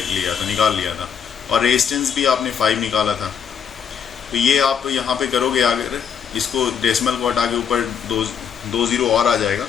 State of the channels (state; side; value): quieter; right; 7.6 dB